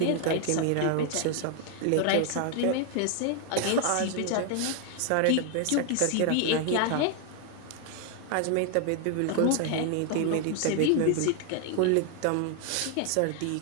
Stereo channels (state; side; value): different; both; correlation 0.00